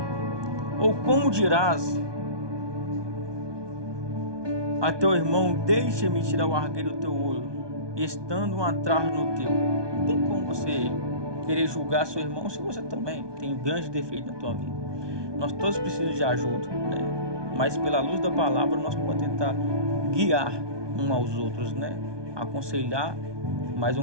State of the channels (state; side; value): late; left; 1.2 ms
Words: ou como dirás a teu irmão, deixa-me tirar o argueiro do teu olho, estando uma trave no teu? Não tem como você querer julgar seu irmão se você também tem um grande defeito na tua vida. Nós todos precisamos de ajuda, né? Mas pela luz da palavra nós podemos tentar guiar uns aos outros, né? Aconselhar, mas